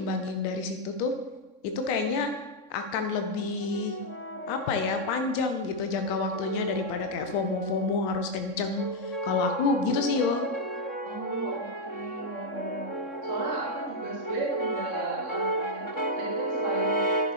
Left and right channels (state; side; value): late; right; 3.6 ms